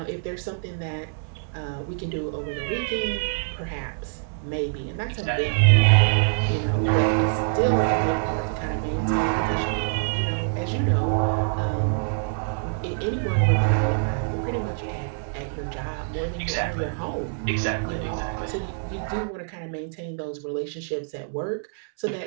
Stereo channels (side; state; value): left; silent; 62 dB below the other